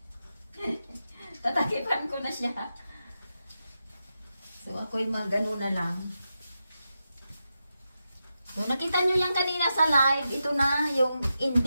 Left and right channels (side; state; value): both; inverted; correlation -0.88